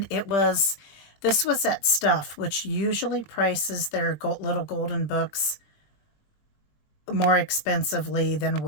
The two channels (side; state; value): right; late; 20 ms